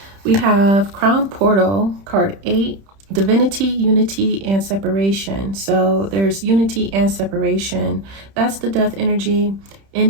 We have Crown Portal, card 8, Divinity, Unity, and Separation. So there's unity and separation. That's the death energy,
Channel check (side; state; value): left; late; 31 ms